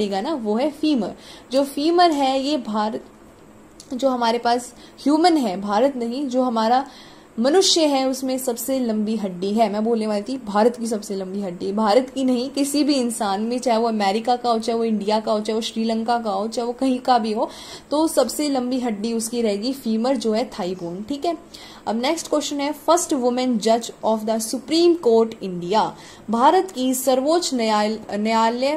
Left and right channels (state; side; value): identical; both; correlation 1.00